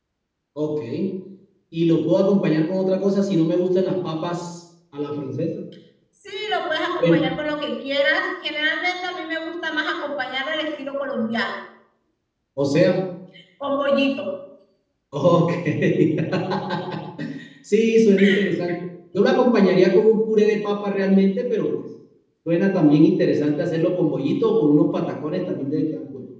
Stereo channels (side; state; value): both; identical; correlation 1.00